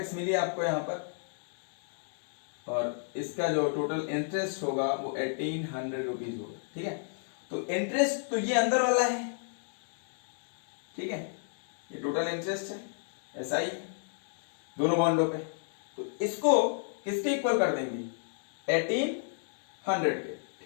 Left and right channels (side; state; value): right; silent; digital silence